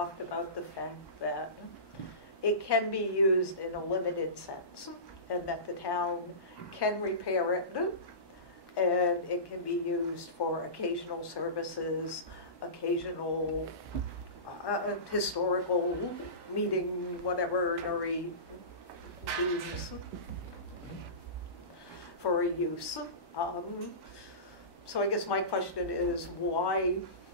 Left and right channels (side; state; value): right; late; 1.1 ms